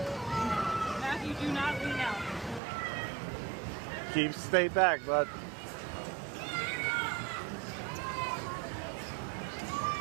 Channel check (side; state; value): left; drops out; at 2.6 s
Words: Matthew, do not lean out. Stay back, bud.